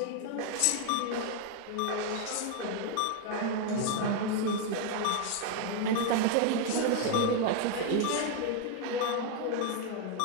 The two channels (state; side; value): different; both; correlation 0.01